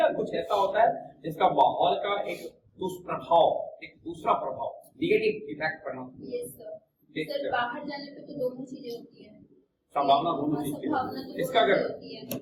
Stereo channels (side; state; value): both; identical; correlation 1.00